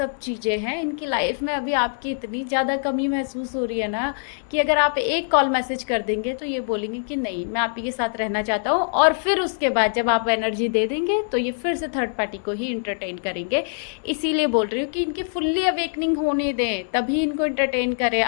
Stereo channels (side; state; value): right; silent; 62 dB below the other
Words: चीज़ें हैं इनकी लाइफ में। अभी आपकी इतनी ज़्यादा कमी महसूस हो रही है ना कि अगर आप एक कॉल मैसेज कर देंगे तो ये बोलेंगे कि नहीं, मैं आप ही के साथ रहना चाहता हूँ, और फिर उसके बाद जब आप एनर्जी दे देंगे तो ये फिर से थर्ड पार्टी को ही इंटरटेन करेंगे। इसीलिए बोल रही हूँ कि इनकी फुल्ली अवेकनिंग होने दें, तभी इनको इंटरटेन करें।